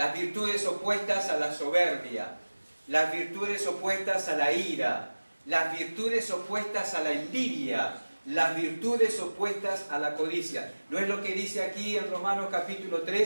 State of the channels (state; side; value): inverted; both; correlation -1.00